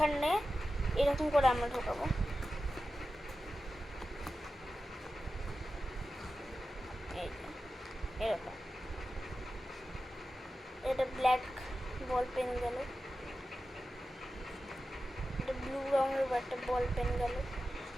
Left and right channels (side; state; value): both; normal; correlation 0.93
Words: এরকম করে আমরা ঢোকাবো। এরকম এটা ব্ল্যাক বল পেন গেল, এটা ব্লু রঙের একটা বল পেন গেল,